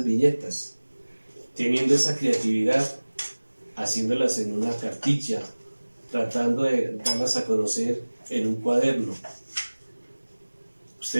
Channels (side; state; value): both; inverted; correlation -1.00